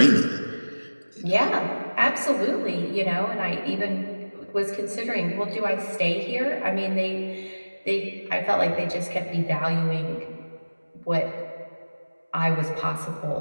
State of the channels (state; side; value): inverted; both; correlation -1.00